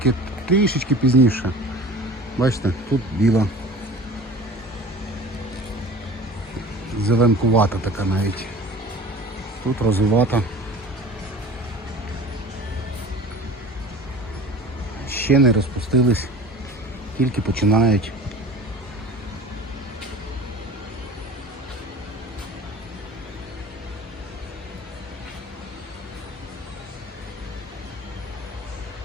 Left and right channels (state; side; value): normal; both; correlation 0.41